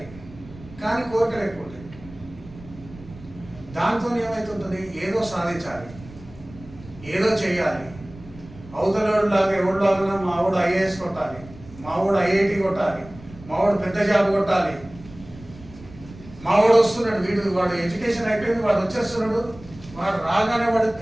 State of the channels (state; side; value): noise; right; rumble, 19 dB below the sound